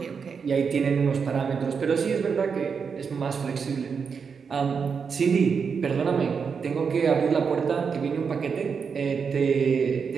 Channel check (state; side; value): quieter; left; 6.0 dB